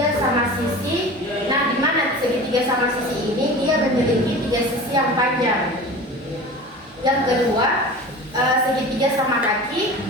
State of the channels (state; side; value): normal; both; correlation 0.36